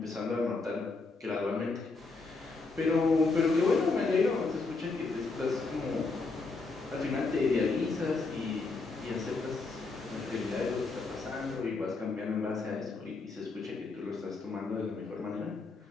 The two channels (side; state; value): right; quieter; 3.9 dB